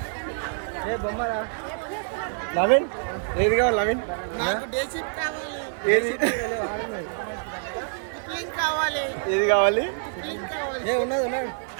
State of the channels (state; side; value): silent; left; 61 dB below the other